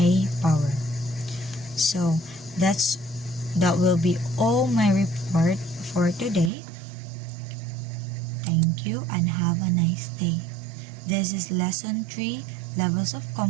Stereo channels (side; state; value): left; drops out; at 6.5 s